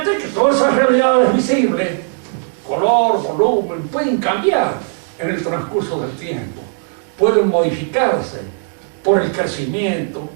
que todas esas realidades visibles, color, volumen, pueden cambiar en el transcurso del tiempo. Pueden modificarse por el crecimiento,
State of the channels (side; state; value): left; silent; 61 dB below the other